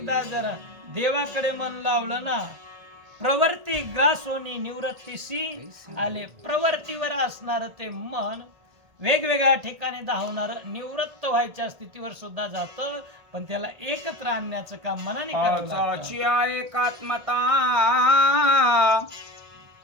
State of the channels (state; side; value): late; left; 1.7 ms